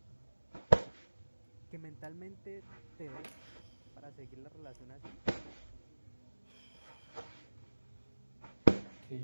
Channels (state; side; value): inverted; both; correlation -1.00